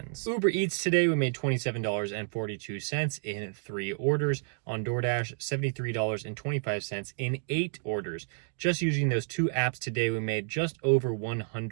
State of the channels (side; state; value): left; silent; 58 dB below the other